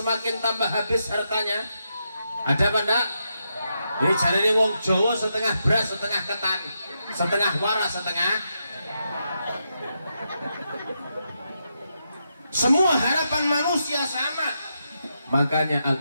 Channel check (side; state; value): both; inverted; correlation -0.83